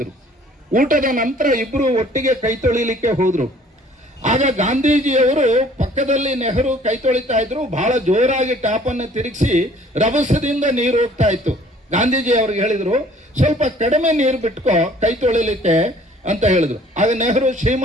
ಊಟದ ನಂತರ ಇಬ್ರು ಒಟ್ಟಿಗೆ ಕೈ ತೊಳಿಲಿಕ್ಕೆ ಹೋದ್ರು. ಆಗ ಗಾಂಧೀಜಿಯವರು ಪಕ್ಕದಲ್ಲಿ ನೆಹರು ಕೈ ತೊಳಿತಾ ಇದ್ರು. ಬಹಳ ಜೋರಾಗಿ ಟ್ಯಾಪ್ ಅನ್ನು ತಿರುಗಿಸಿ ರಭಸದಿಂದ ನೀರು ಹೋಗ್ತಾ ಇತ್ತು. ಗಾಂಧೀಜಿ ಅವ್ರಿಗೆ ಹೇಳಿದ್ರು, ಸ್ವಲ್ಪ ಕಡಿಮೆ ನೀರು ಬಿಟ್ಕೋ ಕೈ ತೊಳಿಲಿಕ್ಕೆ ಅಂತ ಹೇಳಿದ್ರು. ಆಗ ನೆಹರು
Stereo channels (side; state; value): both; normal; correlation 0.55